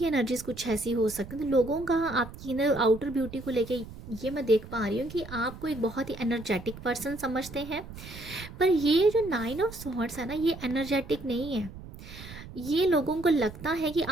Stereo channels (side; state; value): right; noise; rumble, 14 dB below the sound